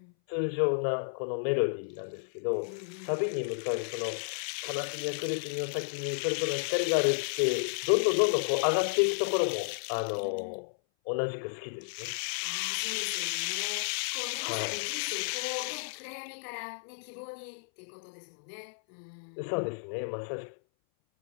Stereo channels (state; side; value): silent; right; 56 dB below the other